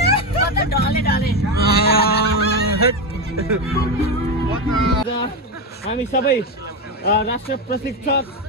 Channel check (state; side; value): normal; both; correlation 0.13